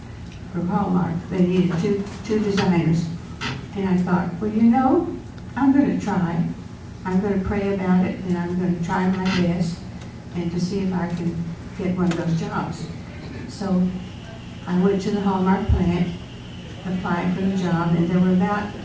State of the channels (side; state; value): both; identical; correlation 1.00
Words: from Hallmark. They needed two designers. And I thought, well, you know, I'm going to try. I'm going to pray about it, and I'm going to try my best and to see if I can get one of those jobs. So I went to the Hallmark plant, applied for the job, and there were about